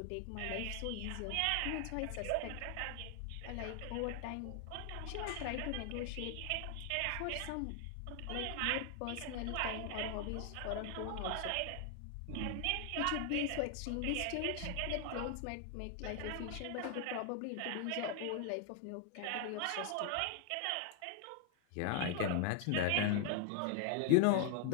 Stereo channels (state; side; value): different; both; correlation 0.00